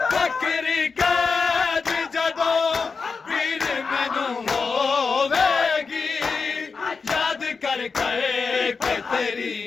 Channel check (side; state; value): right; quieter; 4.9 dB